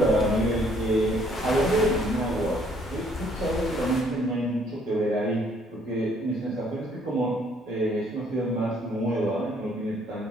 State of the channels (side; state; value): both; normal; correlation 0.64